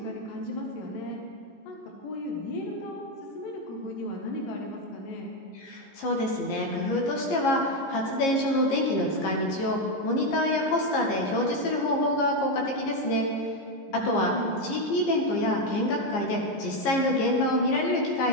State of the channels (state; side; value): late; right; 15 ms